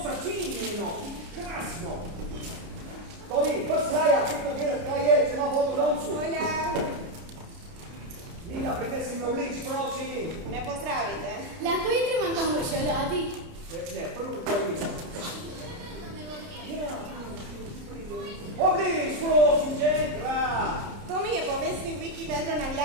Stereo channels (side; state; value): left; late; 30 ms